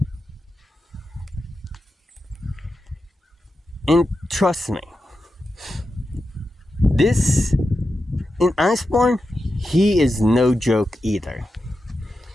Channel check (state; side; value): normal; both; correlation 0.90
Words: And trust me, this, in Iceborne, he is no joke either.